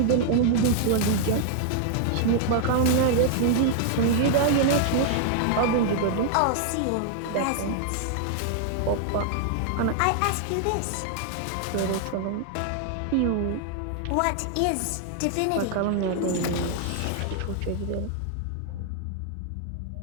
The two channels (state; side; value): different; both; correlation 0.00